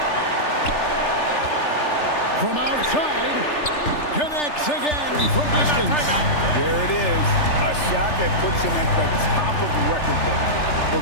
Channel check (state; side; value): late; right; 3.4 ms